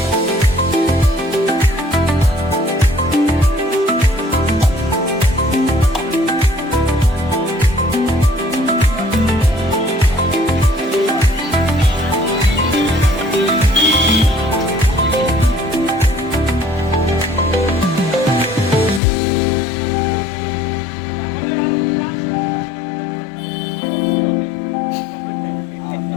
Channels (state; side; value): drops out; right; at 19.0 s